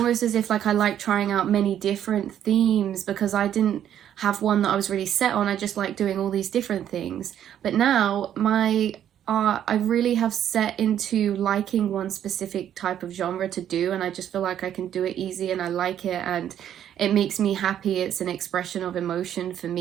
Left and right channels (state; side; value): quieter; left; 10.3 dB